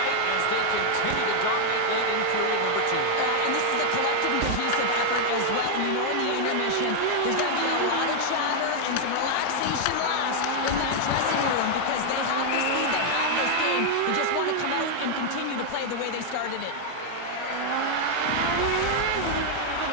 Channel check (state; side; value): different; both; correlation 0.00